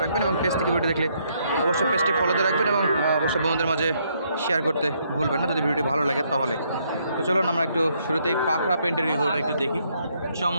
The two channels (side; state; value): both; inverted; correlation -0.72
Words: রাখবেন এবং পেজ থেকে ভিডিও দেখলে অবশ্যই পেজটি ফলো দিয়ে রাখবেন এবং অবশ্যই বন্ধুদের মাঝে শেয়ার করতে ভুলবেন না যদি ভিডিওটি ভালো লাগে তাহলে। তো চলুন আমরা একটু শুরুতেই পাকড়া পেন্টের গরুটা একটু দেখি।